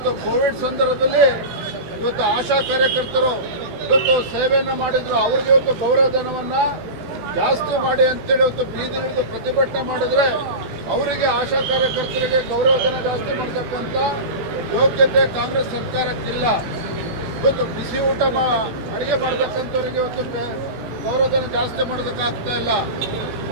ಕೋವಿಡ್ ಸಂದರ್ಭದಲ್ಲಿ ಇವತ್ತು ಆಶಾ ಕಾರ್ಯಕರ್ತರು ಇವತ್ತು ಸೇವೆಯನ್ನ ಮಾಡಿದ್ರು, ಅವರಿಗೆ ಇವತ್ತು ಗೌರವಧನವನ್ನ ಜಾಸ್ತಿ ಮಾಡಿ ಅಂತೇಳಿ ಇವತ್ತು ಬೀದಿ ಹಿಡಿದು ಪ್ರತಿಭಟನೆ ಮಾಡಿದ್ರೆ ಅವರಿಗೆ ಆಶಾ ಕಾರ್ಯಕರ್ತರಿಗೆ ಗೌರವಧನ ಜಾಸ್ತಿ ಮಾಡತಕ್ಕಂತ ಯೋಗ್ಯತೆ ಕಾಂಗ್ರೆಸ್ ಸರ್ಕಾರಕ್ಕಿಲ್ಲ. ಇವತ್ತು ಬಿಸಿ ಊಟ ಅಡಿಗೆ ಮಾಡತಕ್ಕಂಥವ್ರಿಗೆ ಇವತ್ತು ಗೌರವಧನ ಜಾಸ್ತಿ ಮಾಡೋದಕ್ಕಾಗ್ತಾ ಇಲ್ಲ.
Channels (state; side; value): late; left; 18 ms